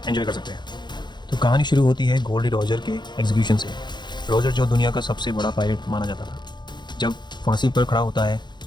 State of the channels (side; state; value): right; late; 0.21 ms